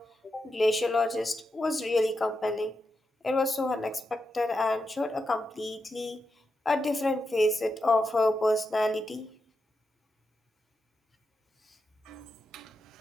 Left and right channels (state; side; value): normal; both; correlation 0.87